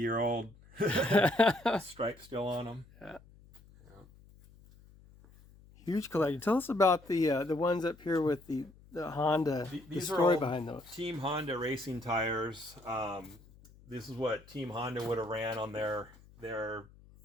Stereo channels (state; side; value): noise; left; hum, 24 dB below the sound